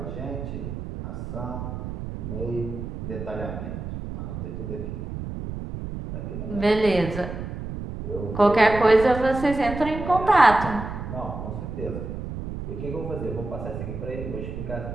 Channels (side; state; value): right; noise; rumble, 7 dB below the sound